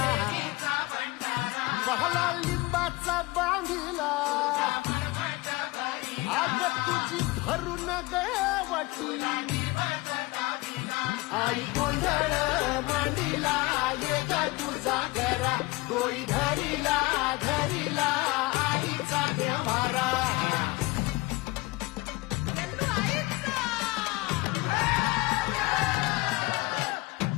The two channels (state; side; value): quieter; right; 22.1 dB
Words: बहला लिंबाचा बांधिला आग तुझी भरून गवटी आई गोंधळ मांडीला ये ग तुझा घरा डोई धरीला धरीला आईचा देवारा गल्लू आईचा